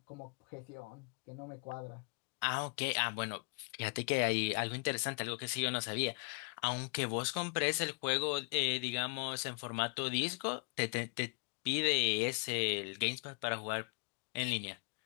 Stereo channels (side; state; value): right; quieter; 39.4 dB